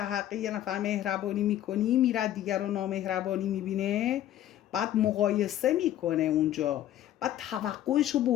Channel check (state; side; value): quieter; right; 12.4 dB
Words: حق یه نفر مهربانی میکنی، میره دیگر رو نامهربانی میبینه، بعد مقایسه میکنه اونجا، بعد توقعشو